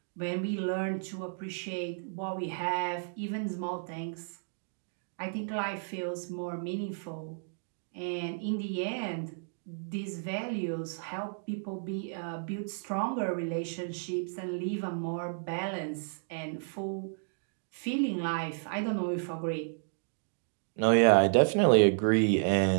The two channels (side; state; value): left; silent; digital silence